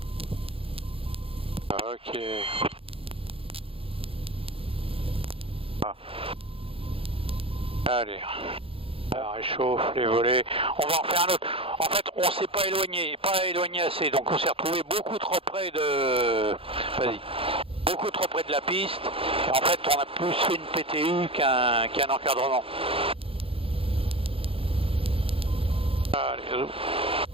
Ok. Ah. Allez. Alors, réchauffe les volets. On va en faire un autre. En fait, on s'est pas éloigné assez, donc on s'est retrouvé beaucoup trop près de. Vas-y. Beaucoup trop près de la piste. Et en fait, on a plus fait une PTU qu'un encadrement. Allez.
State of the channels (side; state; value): left; late; 0.27 ms